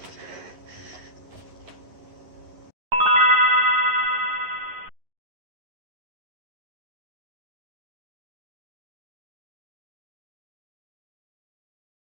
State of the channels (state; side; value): late; left; 10 ms